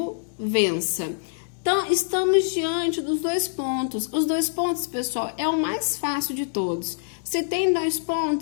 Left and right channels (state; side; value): silent; right; 62 dB below the other